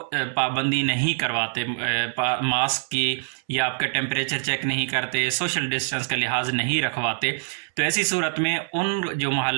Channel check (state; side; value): silent; left; 62 dB below the other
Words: پابندی نہیں کرواتے ماسک کی، یا آپ کا ٹیمپریچر چیک نہیں کرتے، سوشل ڈسٹینس کا لحاظ نہیں رکھواتے، تو ایسی صورت میں ان جو